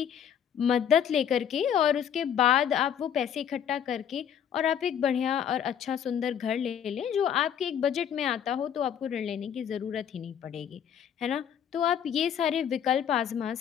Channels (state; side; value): quieter; right; 8.9 dB